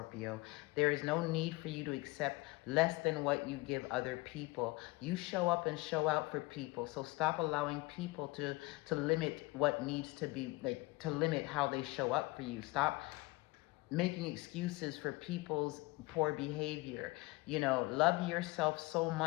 There is no need for you to accept less than what you give other people. You show up and show out for people. So stop allowing people to limit what needs to be, like, to limit how they show up for you. Stop making excuses for people's poor behavior. You know, love yourself so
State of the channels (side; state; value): right; quieter; 22.5 dB